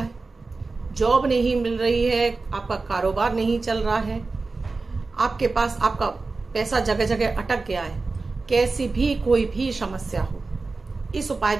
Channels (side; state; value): left; quieter; 3.8 dB